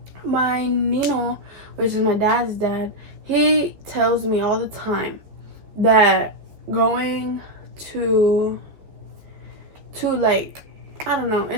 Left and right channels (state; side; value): late; left; 14 ms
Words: My Nino, which is my dad's dad, he tells me all the time that going to like, I don't know,